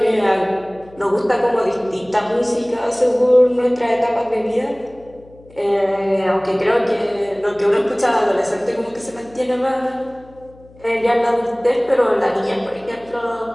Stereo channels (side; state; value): left; noise; hum, 25 dB below the sound